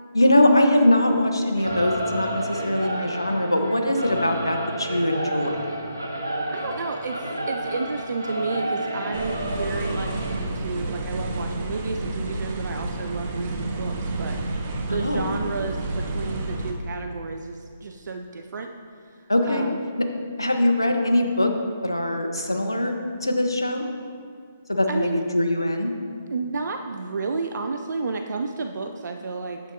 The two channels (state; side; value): inverted; both; correlation -0.83